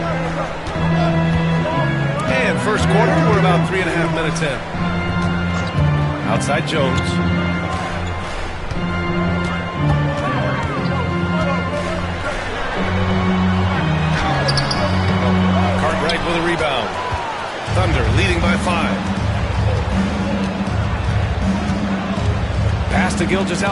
And first quarter, we're about 3.5 minutes in. Outside Jones. Cartwright with a rebound. Thunder leading by 5. Pass to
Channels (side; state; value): both; identical; correlation 1.00